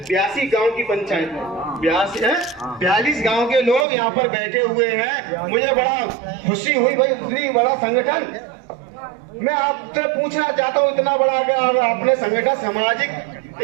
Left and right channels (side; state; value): left; drops out; at 3.9 s